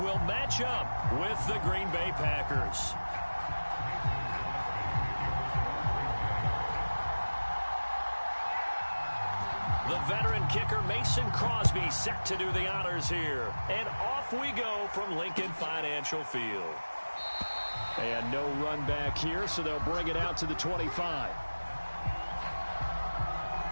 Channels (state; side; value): inverted; both; correlation -1.00